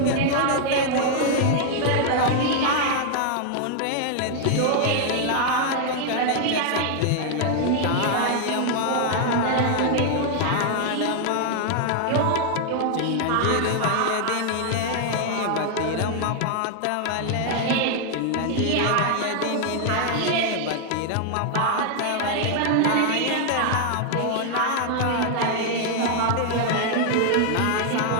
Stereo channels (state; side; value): different; both; correlation 0.00